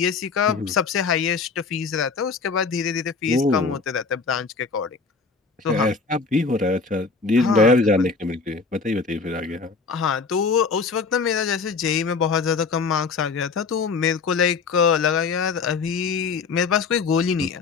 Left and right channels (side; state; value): right; quieter; 4.7 dB